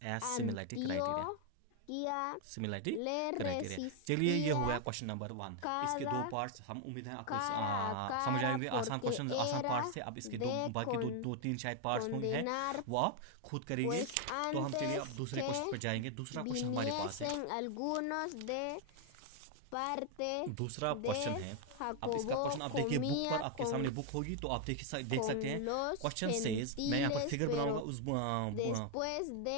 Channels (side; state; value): both; different; correlation 0.01